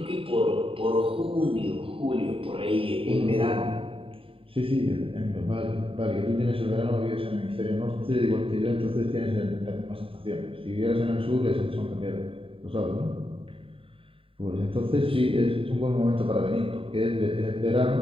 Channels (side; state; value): left; late; 0.26 ms